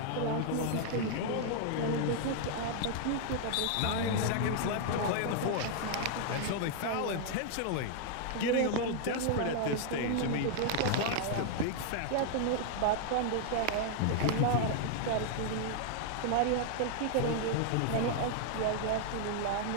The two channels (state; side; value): different; both; correlation 0.00